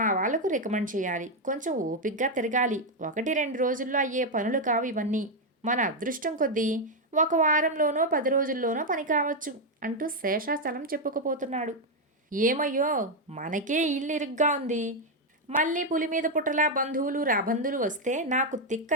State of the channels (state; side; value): normal; both; correlation 0.03